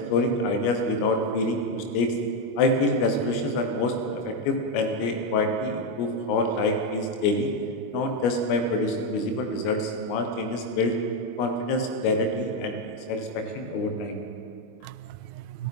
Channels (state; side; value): late; right; 25 ms